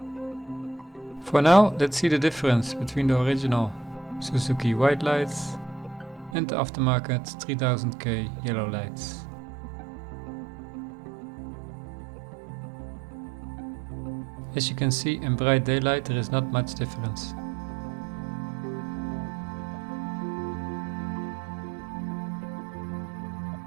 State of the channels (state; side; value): drops out; left; at 6.4 s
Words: For now, let's see the difference between the original Suzuki white lights and the aftermarket 3000K yellow lights. As you can see, in bright daylight there is not much difference.